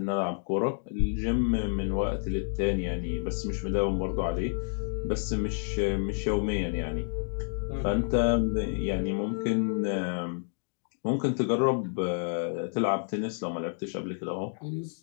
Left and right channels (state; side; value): silent; right; 58 dB below the other